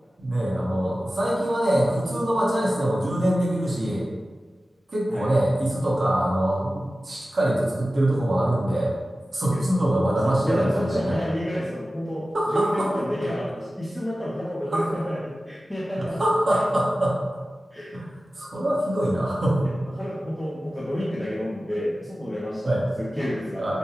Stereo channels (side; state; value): both; normal; correlation 0.95